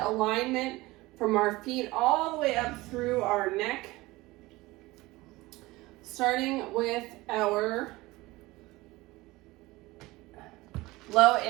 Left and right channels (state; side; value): quieter; left; 20.2 dB